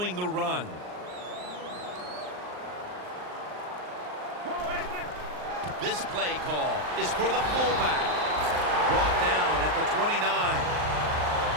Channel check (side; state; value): left; late; 39 ms